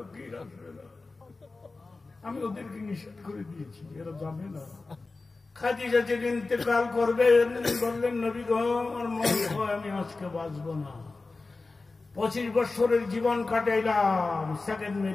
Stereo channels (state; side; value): quieter; right; 3.6 dB